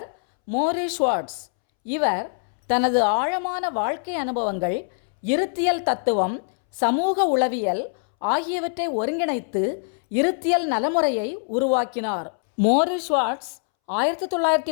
மோரிஸ் ஷுவார்ட்ஸ். இவர் தனது ஆழமான வாழ்க்கை அனுபவங்கள், இருத்தியல் தத்துவம், சமூக உளவியல் ஆகியவற்றை ஒருங்கிணைத்து இருத்தியல் நலமுறையை உருவாக்கினார். மோரிஸ் ஷுவார்ட்ஸ்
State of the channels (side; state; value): right; silent; 63 dB below the other